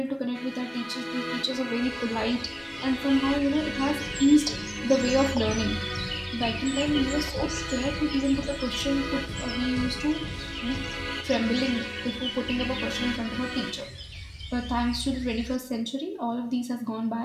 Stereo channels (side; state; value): both; identical; correlation 1.00